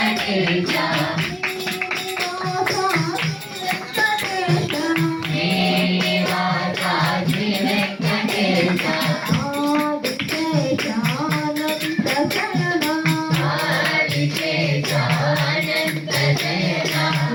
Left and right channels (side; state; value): both; identical; correlation 1.00